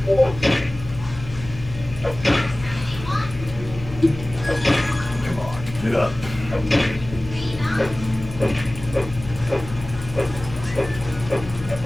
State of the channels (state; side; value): noise; left; hum, 13 dB below the sound